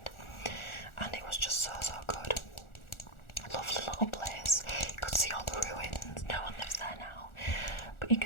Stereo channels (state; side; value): late; right; 1.4 ms